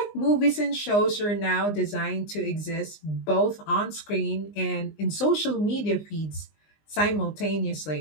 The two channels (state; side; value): late; right; 19 ms